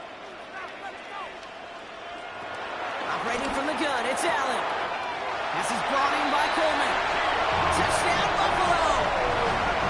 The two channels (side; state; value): both; identical; correlation 1.00